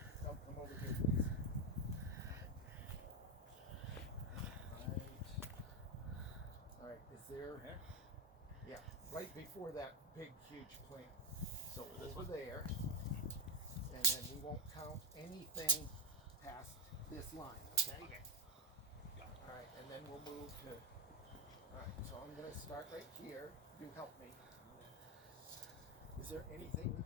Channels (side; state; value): both; normal; correlation 0.09